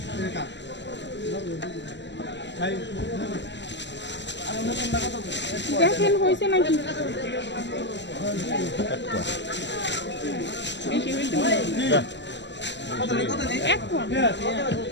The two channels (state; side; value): late; right; 0.52 ms